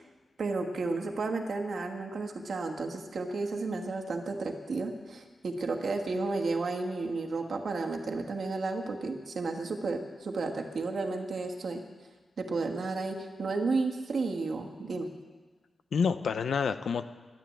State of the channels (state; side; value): normal; both; correlation 0.87